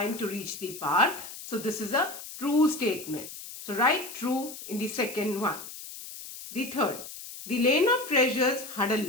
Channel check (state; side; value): noise; left; hiss, 12 dB below the sound